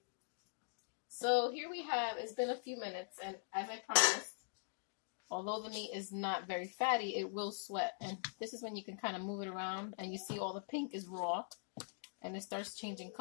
So here we have, it's been a few minutes, and as I promised, although the meat is not very fatty, it will sweat. And this is when you can kind of move it around, and you see all the pink is raw, and it starts changing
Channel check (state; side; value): silent; right; digital silence